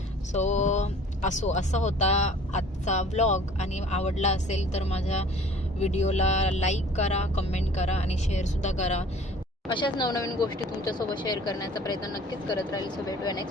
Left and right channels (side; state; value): both; normal; correlation 0.50